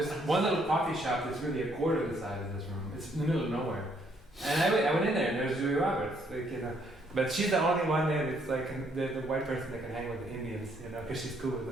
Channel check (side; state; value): both; normal; correlation 0.69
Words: one little coffee shop that's really a quarter of the size of this room. It's in the middle of nowhere, and I went in there, and there's Julia Roberts, like you know. But she's the only one there that's like the white person that can hang with the Indians, you know, because she's cool with